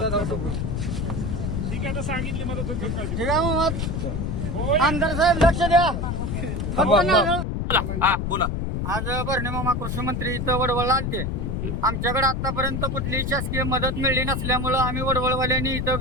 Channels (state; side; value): noise; left; rumble, 2 dB below the sound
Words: ठीक आहे, आता सांगितली मदत होईल. ठीक आहे मग आमदार साहेब लक्ष द्या. बोला. आज भरणे मामा कृषी मंत्री इथं वडवळला आलते. आमच्याकडे आतापर्यंत कुठलीही शासकीय मदत मिळली नसल्यामुळं आम्ही वडवळवाल्यांनी इथं